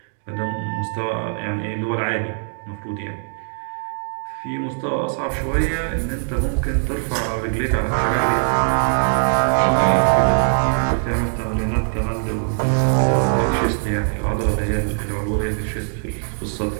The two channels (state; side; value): silent; left; digital silence